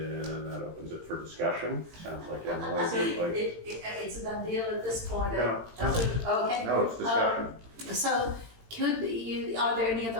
that opens it for discussion. Sounds like Emily So would like. it's a done deal at this point? No. Okay. No, it's discussion. So are there any other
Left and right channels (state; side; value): late; left; 18 ms